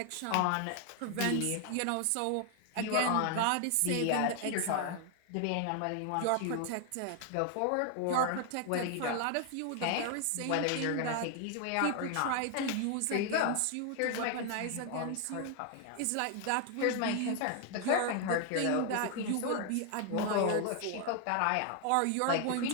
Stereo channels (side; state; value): both; different; correlation 0.00